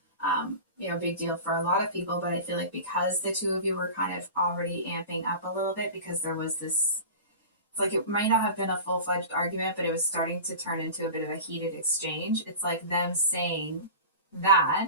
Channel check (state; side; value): inverted; both; correlation -0.33